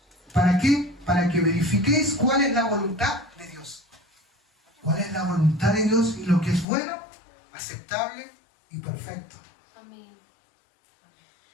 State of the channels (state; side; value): drops out; right; at 6.7 s